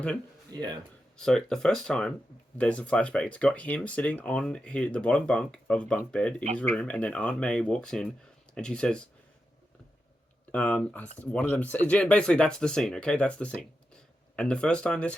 in? Yeah. So the first time there's a flashback. It's got him sitting on the bottom bunk of a bunk bed in his room, and then Aunt May walks in, and she says, one of them, basically that's the scene, okay? That's the scene. And the first time this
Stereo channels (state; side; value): normal; both; correlation 0.89